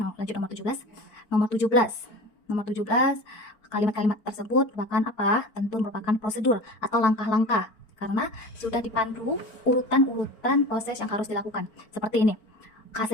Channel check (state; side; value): late; right; 4.4 ms